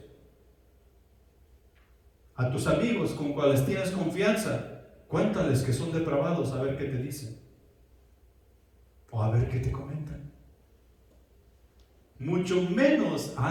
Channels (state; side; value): identical; both; correlation 1.00